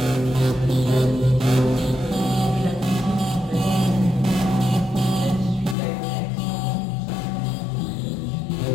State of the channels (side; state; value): right; drops out; at 5.8 s